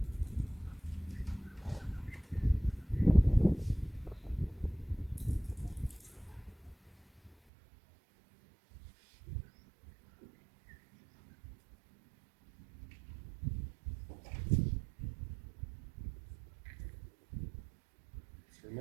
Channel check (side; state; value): left; drops out; at 7.4 s